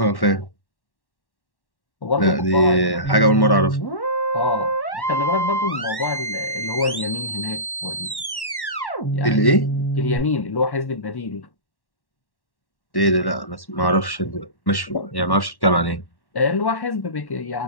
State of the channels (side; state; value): right; late; 1.1 ms